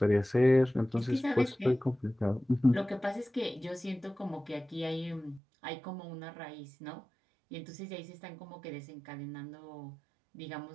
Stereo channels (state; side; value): drops out; left; at 5.4 s